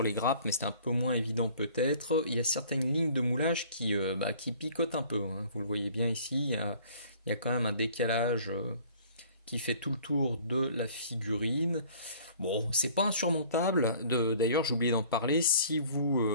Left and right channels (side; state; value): both; inverted; correlation -0.52